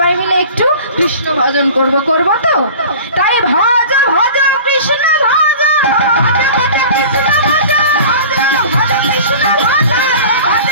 মিলে একটু কৃষ্ণ ভজন করবো তো। তাই ভজ ভজ কৃষ্ণ ভজ, ভজ ভজ কৃষ্ণ ভজ, ভজ ভজ কৃষ্ণ ভজ, ভজ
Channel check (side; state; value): both; inverted; correlation -0.40